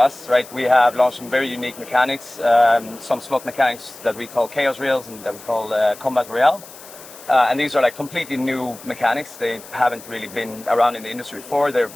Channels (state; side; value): noise; left; hiss, 18 dB below the sound